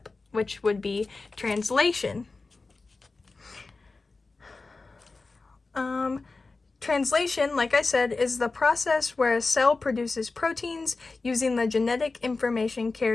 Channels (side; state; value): right; quieter; 3.8 dB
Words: which would be translation. Translation, like I said, is the process where a cell produces proteins using the genetic information